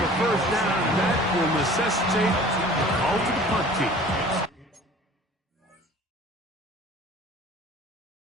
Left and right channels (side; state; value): both; normal; correlation 0.46